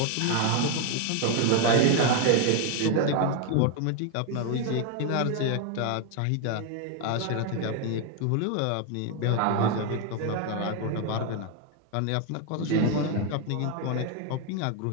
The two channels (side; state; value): both; different; correlation 0.01